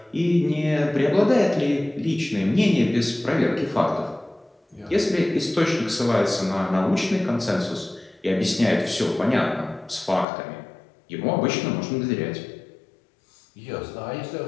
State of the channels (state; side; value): drops out; right; at 10.2 s